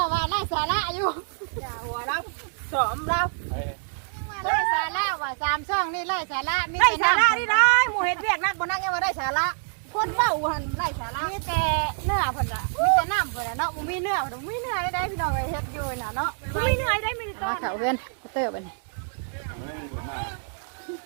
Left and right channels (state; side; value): silent; left; 61 dB below the other